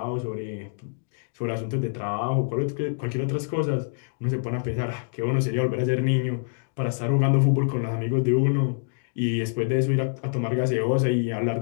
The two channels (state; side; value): silent; right; digital silence